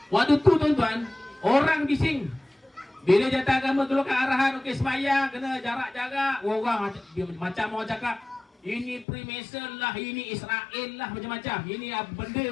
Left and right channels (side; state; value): right; drops out; at 9.1 s